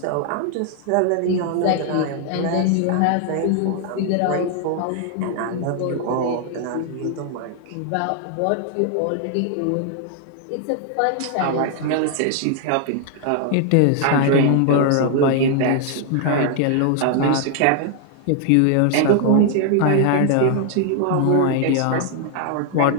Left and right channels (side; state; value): both; different; correlation 0.00